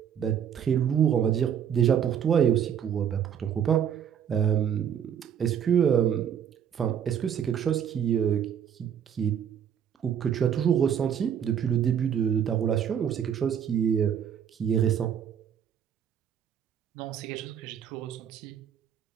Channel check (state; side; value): quieter; left; 8.6 dB